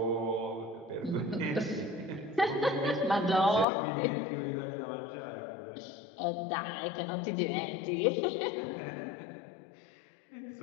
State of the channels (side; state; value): right; drops out; at 3.7 s